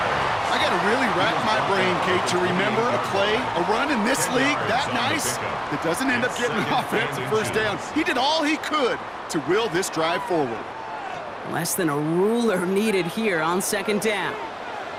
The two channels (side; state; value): both; identical; correlation 1.00